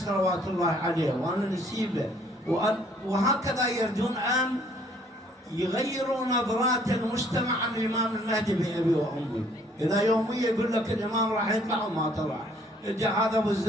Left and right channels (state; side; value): normal; both; correlation 0.61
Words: الله عليه وأنا نسيبه، وهكذا يريدون أن يغيروا نظرات المجتمع عن الإمام المهدي بأبي وأمي. إذا يوميا يقول لك الإمام راح يطلع وما طلع، إجا هذا أبو